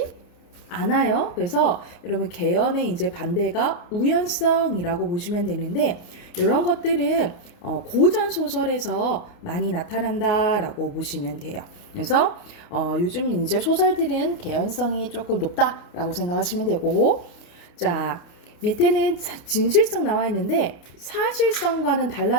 않아요. 그래서 여러분 개연의 이제 반대가 우연성이라고 보시면 되는데 이런 것들은 고전 소설에서 많이 나타난다라고 보시면 돼요. 그래서 요즘 이제 소설들은 개연성이 조금 높다라고 생각하시면 되고, 자, 밑에는 진실성 나와 있는데 사실성과는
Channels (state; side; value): late; right; 29 ms